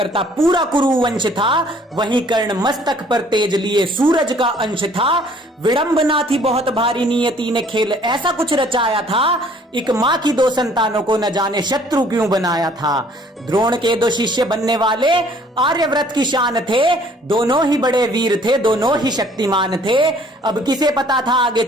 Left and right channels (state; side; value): normal; both; correlation 0.57